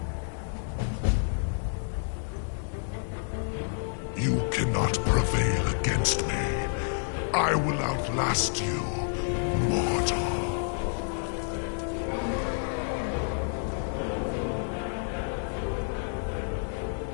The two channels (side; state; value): right; silent; 58 dB below the other